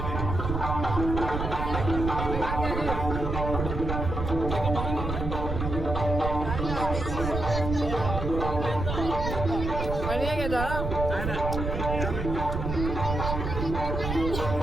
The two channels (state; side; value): noise; right; rumble, 3 dB below the sound